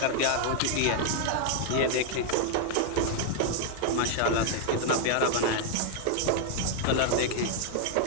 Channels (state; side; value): different; both; correlation 0.00